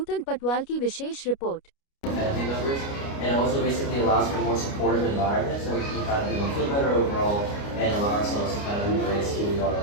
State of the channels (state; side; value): late; right; 29 ms